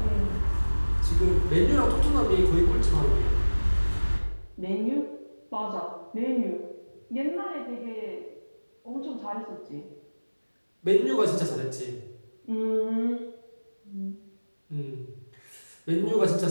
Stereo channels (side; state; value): both; inverted; correlation -1.00